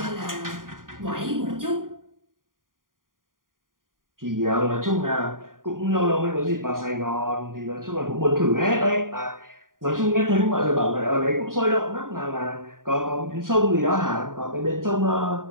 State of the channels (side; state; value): left; late; 0.90 ms